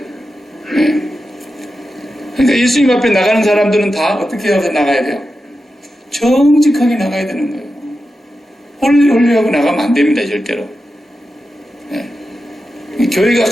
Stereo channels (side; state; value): both; normal; correlation 0.90